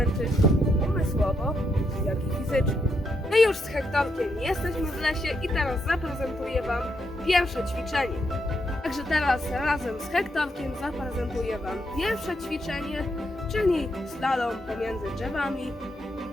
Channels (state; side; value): normal; both; correlation 0.79